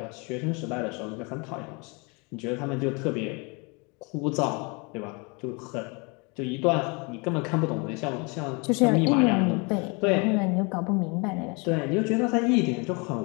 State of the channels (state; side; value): quieter; right; 30.6 dB